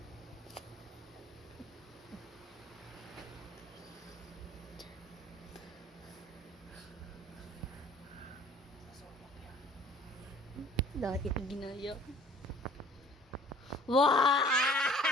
Dahil ito ginaya. Wow!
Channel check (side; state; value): both; normal; correlation 0.50